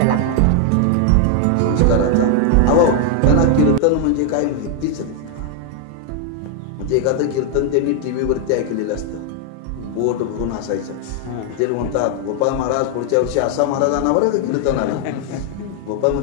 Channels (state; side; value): different; both; correlation 0.00